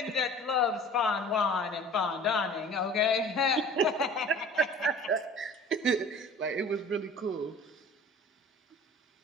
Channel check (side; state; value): both; normal; correlation 0.44